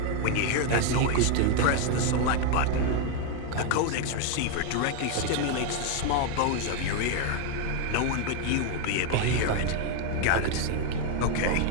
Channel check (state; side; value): different; both; correlation 0.01